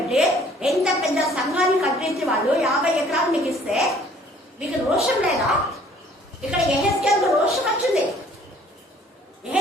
ఎంత పెద్ద సంఘాన్ని కట్టించి వాళ్ళు 50 ఎకరాలు మీకు ఇస్తే మీకు రోషం లేదా? ఇక్కడ ఎహెస్కేల్కు రోషం వచ్చింది.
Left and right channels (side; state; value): both; normal; correlation 0.56